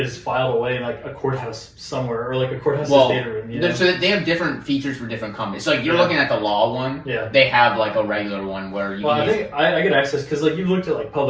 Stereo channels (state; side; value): identical; both; correlation 1.00